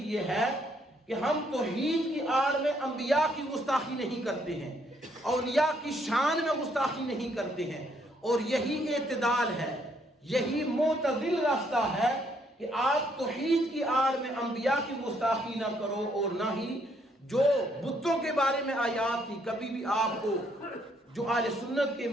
یہ ہے کہ ہم توحید کی آڑ میں انبیاء کی گستاخی نہیں کرتے ہیں، اولیاء کی شان میں گستاخی نہیں کرتے ہیں، اور یہی اعتدال ہے، یہی معتدل راستہ ہے کہ آپ توحید کی آڑ میں انبیاء کی گستاخی نہ کرو، اور نہ ہی جو بتوں کے بارے میں آیات تھی، کبھی بھی آپ کو جو اہل سنت کے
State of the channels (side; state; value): both; normal; correlation 0.70